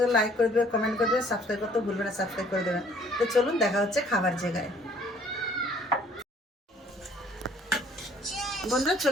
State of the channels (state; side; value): normal; both; correlation 0.58